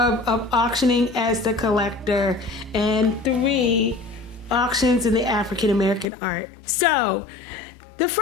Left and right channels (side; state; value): right; drops out; at 6.1 s